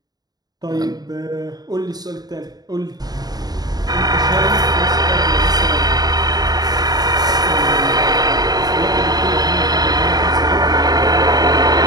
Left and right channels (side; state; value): left; late; 0.19 ms